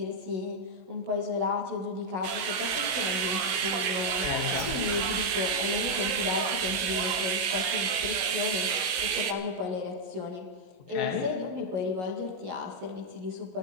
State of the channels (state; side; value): late; left; 17 ms